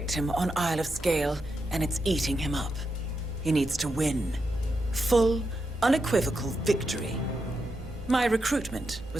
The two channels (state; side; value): normal; both; correlation 0.85